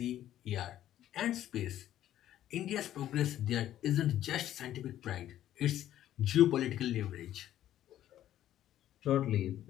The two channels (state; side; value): quieter; right; 12.3 dB